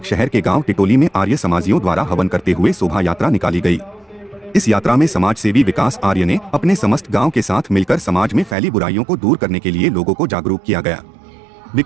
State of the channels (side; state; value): left; drops out; at 8.6 s